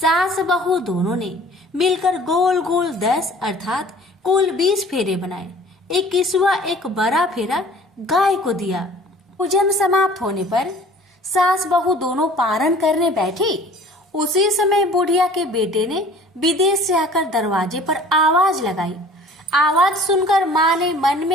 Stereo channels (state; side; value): normal; both; correlation 0.49